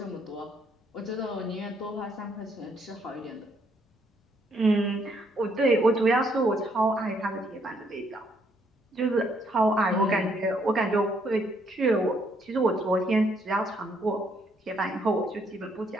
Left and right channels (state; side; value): normal; both; correlation 0.70